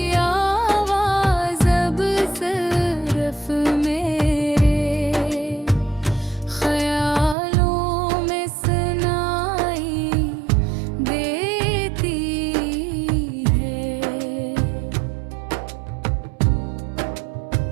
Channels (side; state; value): left; drops out; at 7.4 s